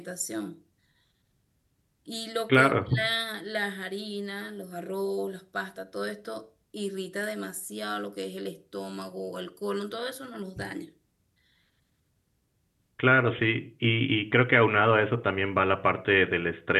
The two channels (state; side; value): identical; both; correlation 1.00